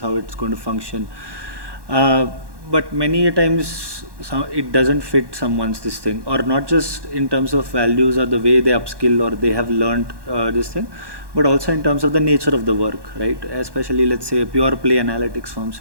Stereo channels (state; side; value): late; left; 1.1 ms